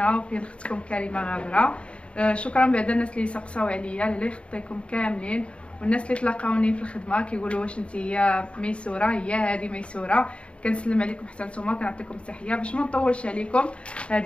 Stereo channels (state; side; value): late; right; 0.059 ms